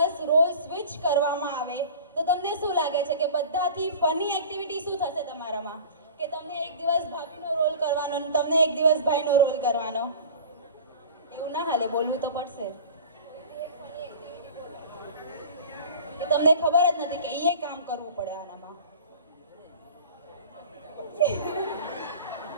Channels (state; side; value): inverted; both; correlation -0.40